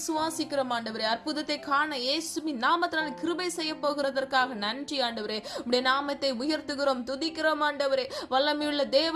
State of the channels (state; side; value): identical; both; correlation 1.00